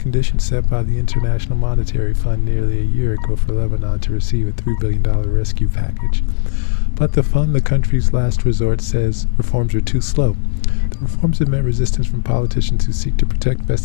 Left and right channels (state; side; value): silent; right; 64 dB below the other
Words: set by the International Monetary Fund nearly a year ago for Lebanon to receive a $3 billion rescue package. But the fund, the country's last resort, says reforms are too slow. The reforms have met resistance from politicians who seek to protect